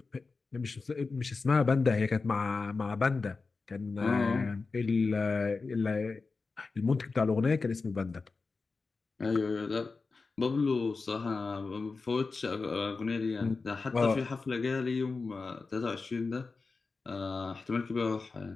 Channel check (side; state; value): right; quieter; 4.2 dB